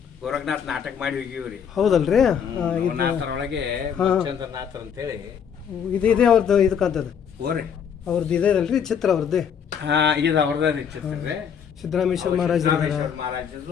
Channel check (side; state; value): right; quieter; 7.6 dB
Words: ಗೋರಖನಾಥ್ ನಾಟಕ ಮಾಡಿ ಹೋಗಿವಿ ರೀ. ಹೌದಲ್ರಿ? ನಾಥರೊಳಗೆ ಚಂದ್ರನಾಥ್ ಅಂತೇಳಿ ಇದೆ ಅವ್ರದ್ದು ಇದು ಕಾಣ್ತದೆ. ಓರಿ ಅವ್ರದ್ದು ಇದೆ ಅಲ್ರಿ ಚಿತ್ರ ಅವ್ರದ್ದೇ? ಹಾಂ, ಇದು ಅವ್ರದ್ದು ರೀ ಚಿತ್ರ ರೀ. ಸಿದ್ದರಾಮೇಶ್ವರ ಮಹಾರಾಜರು,